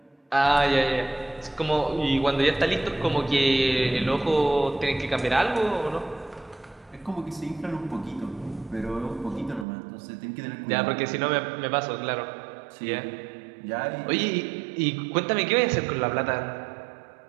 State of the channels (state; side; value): drops out; left; at 9.7 s